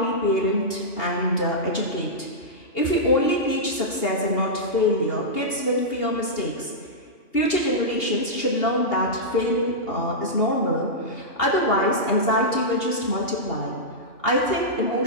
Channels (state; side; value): late; right; 2.8 ms